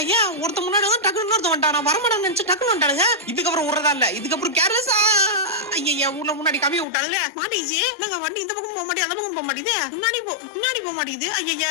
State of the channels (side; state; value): right; drops out; at 6.9 s